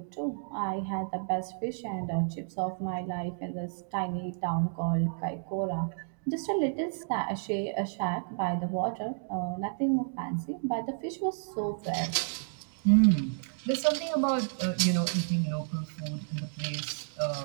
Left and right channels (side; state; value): left; silent; digital silence